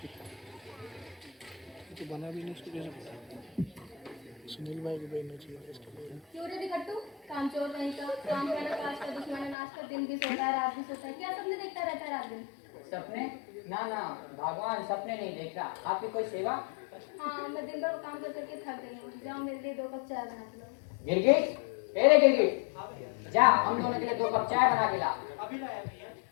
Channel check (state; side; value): drops out; right; at 9.6 s